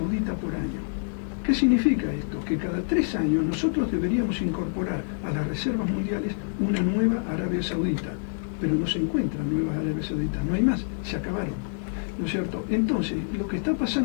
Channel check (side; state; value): right; silent; digital silence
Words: por año. ¿Qué significa esto? Que cada 3 años nosotros deberíamos incorporar a las reservas mundiales una nueva Arabia Saudita, pero no se encuentran nuevas Arabia Sauditas, no hay más, se acabaron, ¿no es cierto? Entonces, lo que está